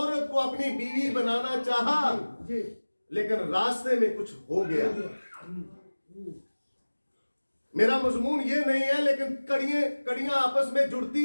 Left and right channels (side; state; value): both; inverted; correlation -1.00